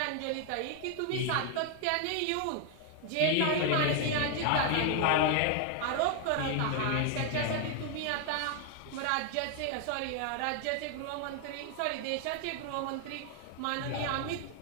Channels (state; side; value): different; both; correlation 0.00